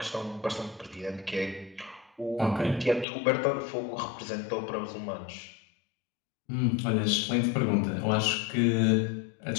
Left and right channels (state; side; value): drops out; right; at 3.1 s